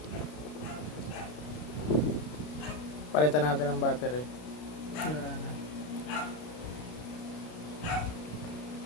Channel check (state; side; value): late; right; 33 ms